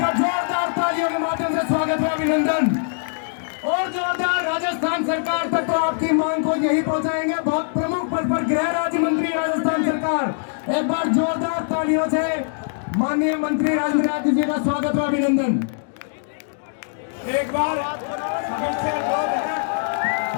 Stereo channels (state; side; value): silent; right; digital silence